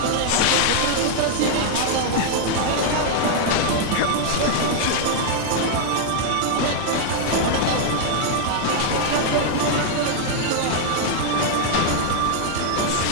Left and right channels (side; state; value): both; different; correlation -0.01